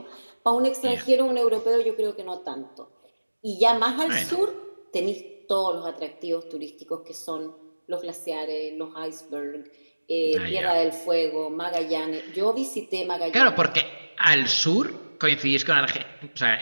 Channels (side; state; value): both; inverted; correlation -1.00